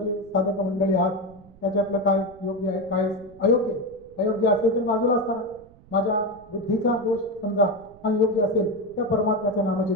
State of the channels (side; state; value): right; noise; rumble, 25 dB below the sound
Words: साधक मंडळी आहात, त्याच्यातलं काय योग्य आहे काय अयोग्य आहे. अयोग्य असेल तर बाजूला असताना माझ्या बुद्धीचा दोष समजा आणि योग्य असेल त्या परमात्म्याचं